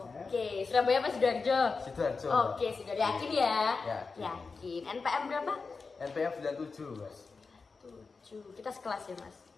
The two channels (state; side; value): quieter; right; 4.5 dB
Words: Surabaya apa Sidoarjo? Sidoarjo. Oke, sudah yakin ya? Yakin. Yakin. NPM berapa? NPM 97, Mas. 7. Kita sekelas ya, Mas?